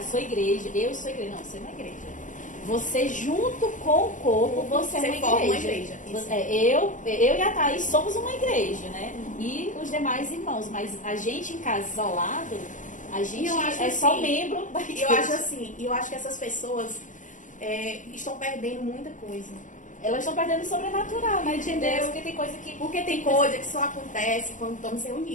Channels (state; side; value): late; right; 0.37 ms